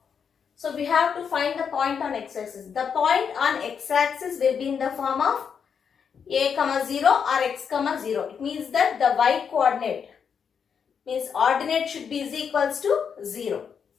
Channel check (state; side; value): quieter; right; 6.9 dB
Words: So we have to find the point on x-axis. The point on x-axis will be in the form of a, 0 or x, 0. It means that the y coordinate means ordinate should be is equals to 0.